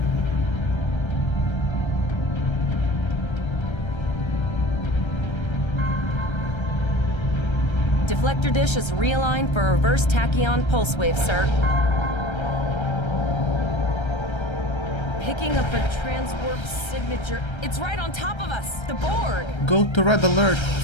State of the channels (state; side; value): late; right; 1.3 ms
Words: Deflector dish is realigned for a reverse tachyon pulse wave, sir. Picking up a transwarp signature. It's right on top of us! The Borg! Go to red alert.